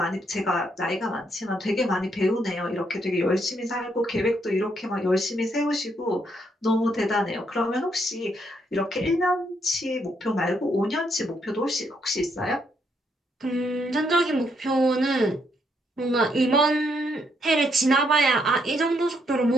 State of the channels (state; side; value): normal; both; correlation 0.74